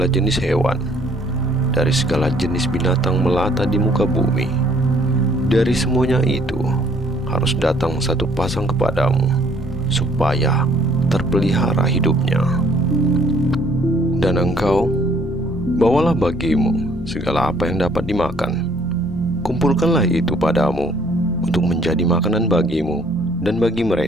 jenis hewan, dari segala jenis binatang melata di muka bumi, dari semuanya itu harus datang satu pasang kepadamu, supaya terpelihara hidupnya. Dan engkau bawalah bagimu segala apa yang dapat dimakan. Kumpulkanlah itu padamu untuk menjadi makanan bagimu dan bagi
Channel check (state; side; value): normal; both; correlation 0.61